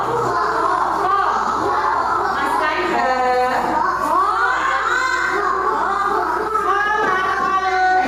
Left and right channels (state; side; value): noise; right; hum, 21 dB below the sound